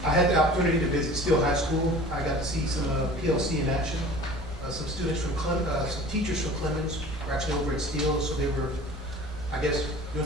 I had the opportunity to visit Steele High School. I got to see some PLC in action. Some students from some teachers from Clemens were actually over at Steele, so they were, I guess,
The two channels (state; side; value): normal; both; correlation 0.43